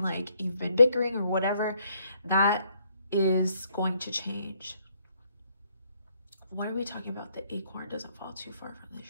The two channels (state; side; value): inverted; both; correlation -0.70